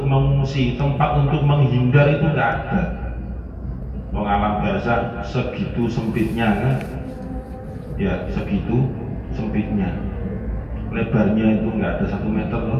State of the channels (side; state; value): both; identical; correlation 1.00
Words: mengungsi, tempat untuk menghindar itu tidak ada. Wong alam barzakh segitu sempitnya kan? Ya segitu sempitnya. Lebarnya itu nggak ada 1 meter